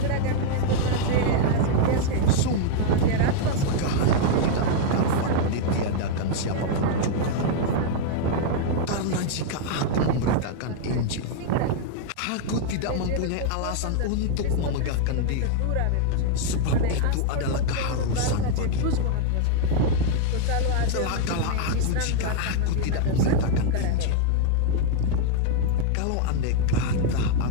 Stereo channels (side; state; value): both; different; correlation 0.00